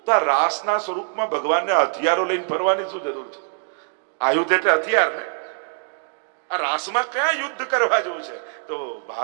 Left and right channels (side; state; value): left; silent; digital silence